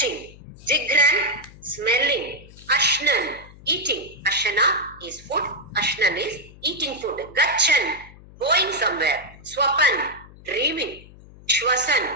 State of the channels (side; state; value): left; noise; hum, 21 dB below the sound